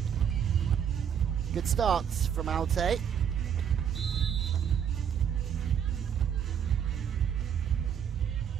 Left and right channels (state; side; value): quieter; left; 8.3 dB